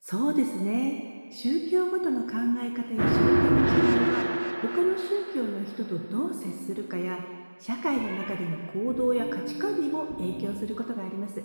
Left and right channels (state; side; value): inverted; both; correlation -1.00